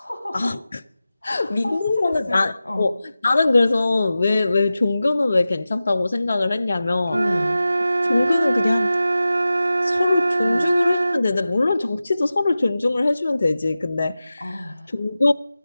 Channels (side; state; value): both; inverted; correlation -0.94